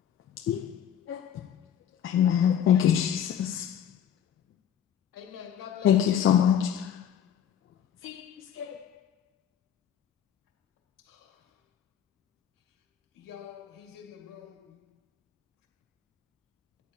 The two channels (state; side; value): quieter; right; 9.4 dB